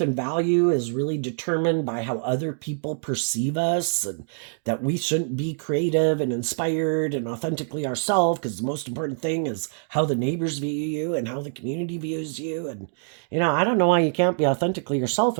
and value is really determined by how other people perceive us, and that we shouldn't be creative and inspired and authentically ourselves, because the most important thing is how the neighbors view you and how the community views you. And I don't know why you can't be authentically yourself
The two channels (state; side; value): silent; left; digital silence